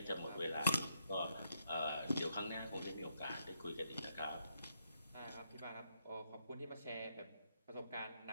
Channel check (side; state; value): both; inverted; correlation -0.77